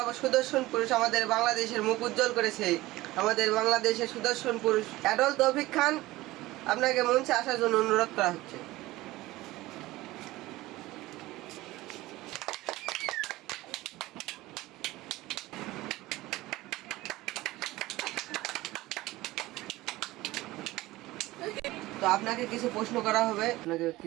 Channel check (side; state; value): left; quieter; 18.3 dB